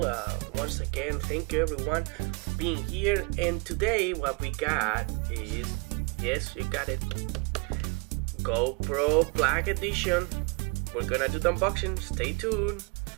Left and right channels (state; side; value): quieter; left; 30.4 dB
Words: Once again, thank you everyone for being here, and today what we got is, yes, you got it, GoPro Black Edition. We're gonna do the unboxing, stay tuned.